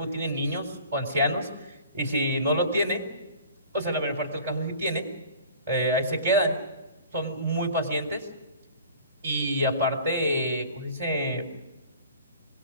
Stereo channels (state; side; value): inverted; both; correlation -0.45